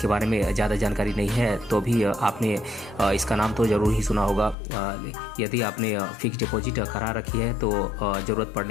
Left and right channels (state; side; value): drops out; right; at 4.5 s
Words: बारे में ज़्यादा जानकारी नहीं है तो भी आपने इसका नाम तो ज़रूर ही सुना होगा। यदि आपने फिक्स्ड डिपॉजिट करा रखी है तो ज़रूरत